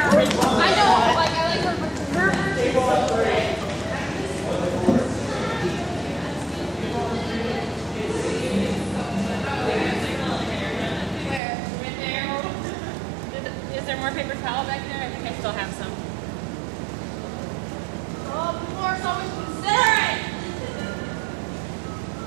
know, like I like her Where? Right there. Is there more paper towel back there? I think I still have some. Oh, Laura's always considerate.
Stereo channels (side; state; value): left; drops out; at 11.4 s